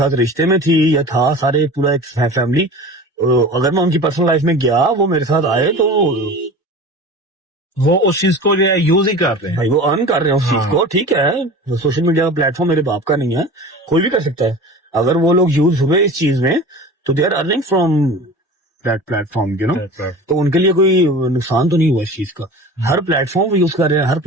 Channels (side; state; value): both; normal; correlation 0.36